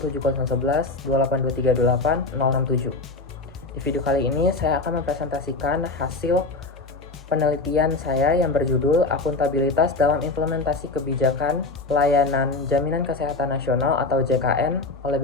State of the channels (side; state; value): right; quieter; 3.3 dB